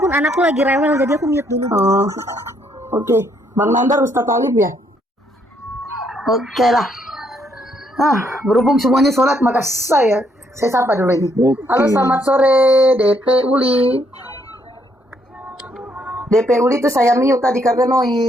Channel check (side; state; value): both; normal; correlation 0.71